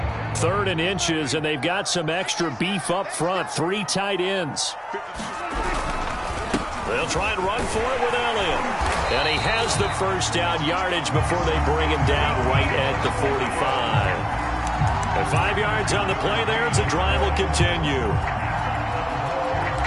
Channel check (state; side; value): identical; both; correlation 1.00